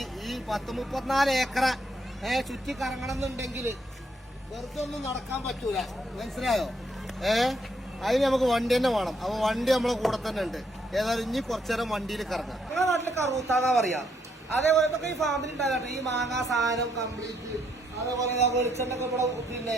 ഈ 34 ഏക്കറ ചുറ്റി കറങ്ങണം എന്നുണ്ടെങ്കിൽ വെറുതെ ഒന്നും നടക്കാൻ പറ്റൂല, മനസ്സിലായോ? അതിന് നമുക്ക് വണ്ടി തന്നെ വേണം. അപ്പൊ വണ്ടി നമ്മളെ കൂടെ തന്നെ ഉണ്ട്. ഏതായാലും ഇനി കുറച്ചേരം വണ്ടിയിൽ കറങ്ങാം. നിങ്ങളുടെ നാട്ടില് കറൂത്താന്നാ പറയാ. അതേപോലെ ഈ ഫാമിലി ഉണ്ടാകട്ടെ, ഈ മാങ്ങാ സാധനം കംപ്ലീറ്റ്. അതേപോലെ വെളിച്ചെണ്ണൊക്കെ ഇവിടെ പിന്നെ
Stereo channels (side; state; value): both; normal; correlation 0.74